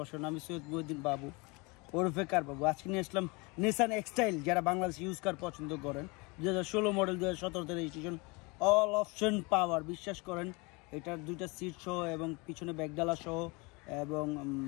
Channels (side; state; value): right; quieter; 27.6 dB